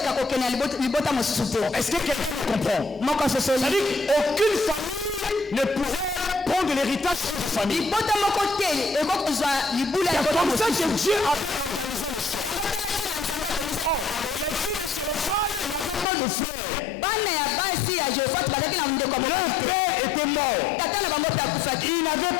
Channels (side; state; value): right; drops out; at 16.1 s